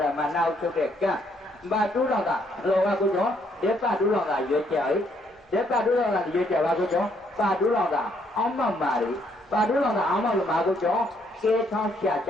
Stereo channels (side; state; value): both; normal; correlation 0.70